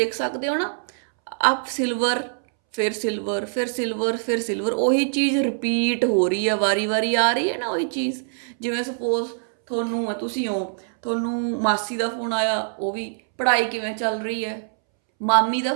ਸਕਦੇ ਹੋ ਨਾ, ਆਪ ਸਿਲਵਰ, ਫਿਰ ਸਿਲਵਰ, ਫਿਰ ਸਿਲਵਰ, ਫਿਰ ਸਿਲਵਰ, ਉਹੀ ਚੀਜ਼ ਰਿਪੀਟ ਹੋ ਰਹੀ ਹੈ, ਵਾਰੀ ਵਾਰੀ ਆ ਰਹੀ ਹੈ ਨਾ ਉਹੀ ਚੀਜ਼। ਜਿਵੇਂ ਸਪੋਜ਼ ਤੁਹਾਨੂੰ ਤੁਸੀਂ ਹੋ, ਤੁਹਾਨੂੰ ਮਾਸੀ ਦਾ ਫੋਨ ਆਇਆ, ਉਹ ਵੀ ਪੜ੍ਹਾਈ ਕਿਵੇਂ ਚੱਲ ਰਹੀ ਹੈ, ਮਾਮੀ ਦਾ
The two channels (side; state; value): left; silent; 63 dB below the other